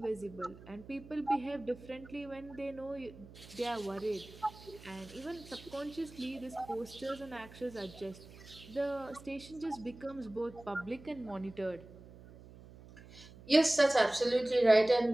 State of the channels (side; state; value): right; noise; hum, 19 dB below the sound